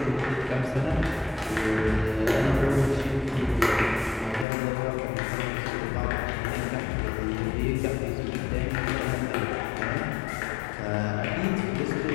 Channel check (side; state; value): right; drops out; at 4.5 s